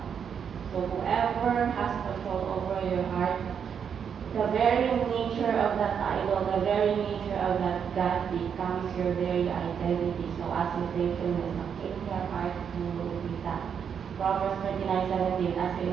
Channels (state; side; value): quieter; left; 7.5 dB